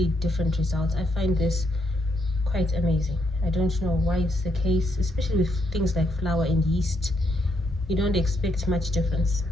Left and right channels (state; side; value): normal; both; correlation 0.76